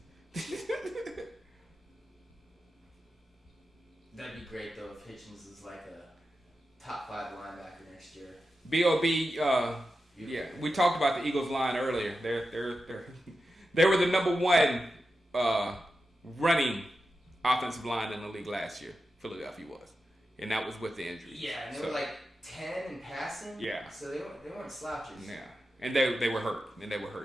That'd be great though if Hitchens is like a top 5 linebacker next year. B.O.B. Yeah, we talked about the Eagles line earlier. They were the number 1 running offensive line in the league last year. Philadelphia was, and that was with the injuries. Yeah, and they were like 10 in passing. Yeah, so they weren't slouches. Yeah. And they were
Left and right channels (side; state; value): both; normal; correlation 0.91